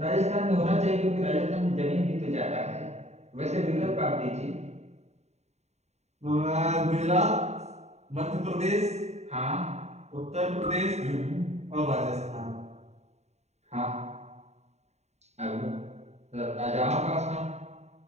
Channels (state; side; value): late; left; 0.32 ms